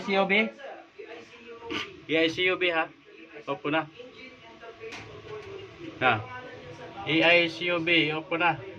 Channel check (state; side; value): identical; both; correlation 1.00